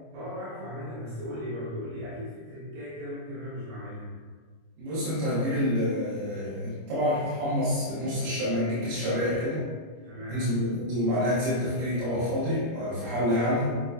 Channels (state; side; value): late; left; 25 ms